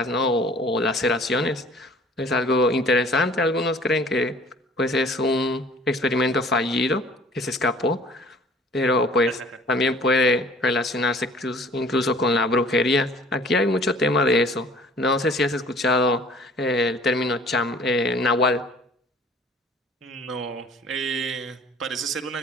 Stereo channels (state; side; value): normal; both; correlation 0.51